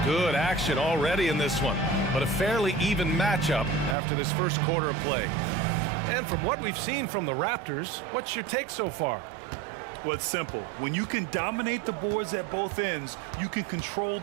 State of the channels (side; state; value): left; drops out; at 4.0 s